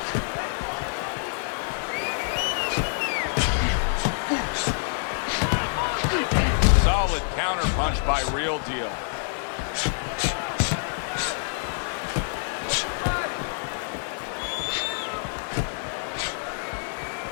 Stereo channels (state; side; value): silent; right; digital silence